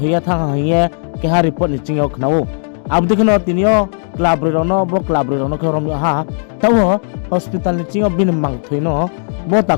thang haye keha report ni chingyo khnao abdi khno tinio club rono bo club rono ke rom ha tawo hospital ni chingo bin mang thuino bo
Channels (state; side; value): silent; right; digital silence